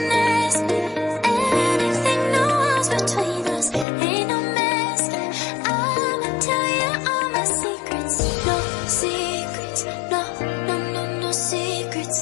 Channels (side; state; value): right; drops out; at 3.9 s